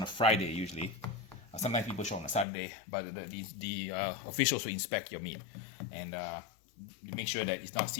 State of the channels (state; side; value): drops out; right; at 2.5 s